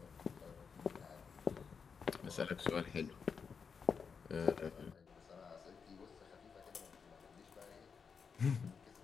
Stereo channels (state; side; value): quieter; right; 5.9 dB